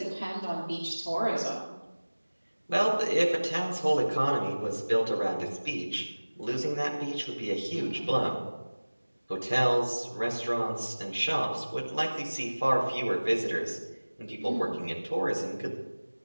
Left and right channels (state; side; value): inverted; both; correlation -1.00